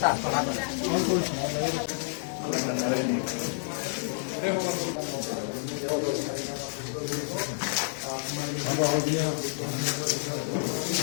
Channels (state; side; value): silent; right; 59 dB below the other